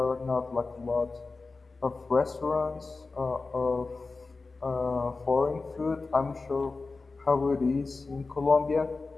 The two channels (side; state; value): right; quieter; 3.9 dB